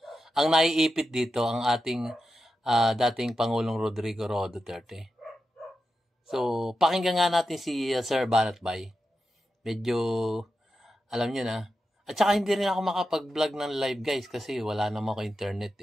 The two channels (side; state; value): both; normal; correlation 0.89